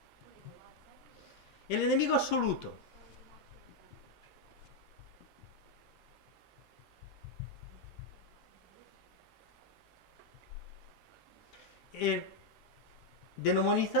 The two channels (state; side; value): normal; both; correlation 0.01